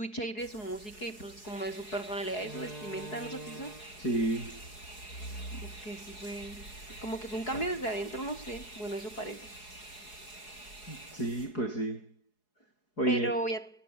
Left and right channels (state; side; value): late; right; 4.7 ms